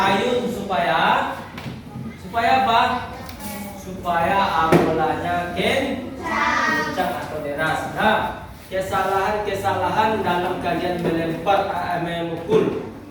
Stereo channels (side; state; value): both; identical; correlation 1.00